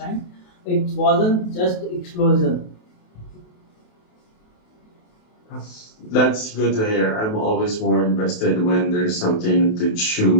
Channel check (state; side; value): late; right; 28 ms